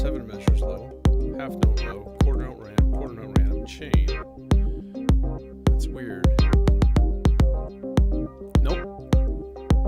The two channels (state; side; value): identical; both; correlation 1.00